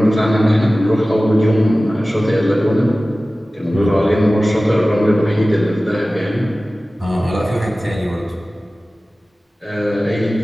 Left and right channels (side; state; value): both; normal; correlation 0.97